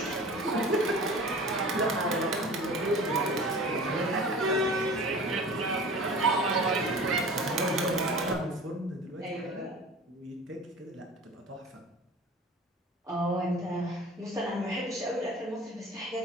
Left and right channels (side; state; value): both; normal; correlation 0.40